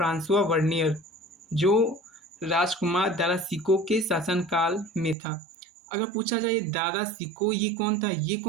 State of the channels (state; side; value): drops out; left; at 5.2 s